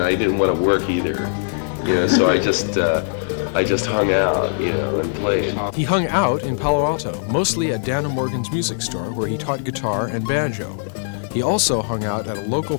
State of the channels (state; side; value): silent; right; 62 dB below the other